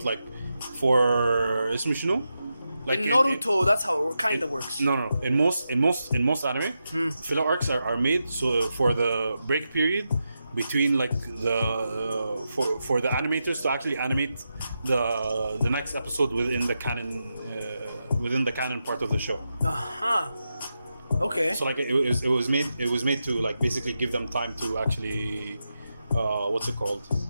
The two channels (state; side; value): inverted; both; correlation -0.88